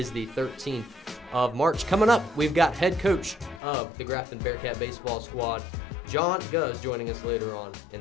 the 13th of March. Coming up, we've got head coach of the Grafton Bearcat baseball squad, John Gouzd, joining us later on in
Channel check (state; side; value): drops out; right; at 3.6 s